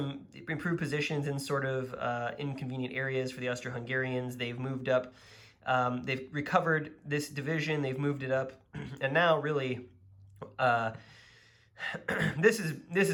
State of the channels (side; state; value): both; identical; correlation 1.00